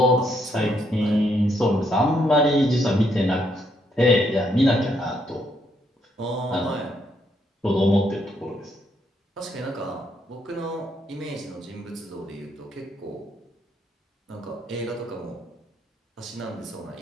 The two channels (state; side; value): normal; both; correlation 0.74